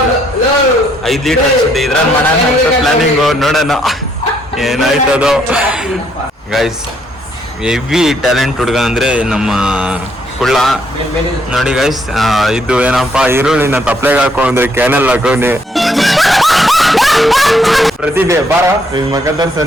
5 ಲೀಟರ್ ಅನ್ಸುತ್ತೆ. ಇದ್ರಲ್ಲಿ ಮಾಡೋಣ ಪ್ಲಾನಿಂಗ್, ನೋಡೋಣ ಏನಾಯ್ತದೋ. ಗೈಸ್ ಹೆವಿ ಟ್ಯಾಲೆಂಟ್ ಹುಡುಗ ಅಂದ್ರೆ ನಮ್ಮ ಕುಳ್ಳ. ನೋಡಿ ಗೈಸ್, ಇದು ಏನಪ್ಪಾ, ಈರುಳ್ಳಿನ ತಪ್ಲೆಗೆ ಹಾಕೊಂಡ್ರೆ ಕ್ಯಾನಲ್ ಹಾಕೊಂಡೆ. ಪ್ರತಿಭೆ ಬಾರ ಮಗ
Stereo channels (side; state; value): both; normal; correlation 0.70